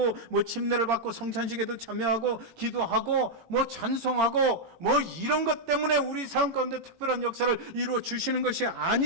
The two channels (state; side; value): late; left; 18 ms